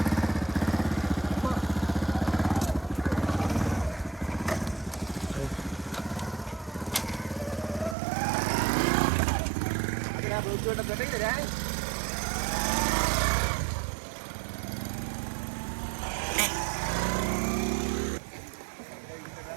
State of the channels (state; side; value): drops out; left; at 8.0 s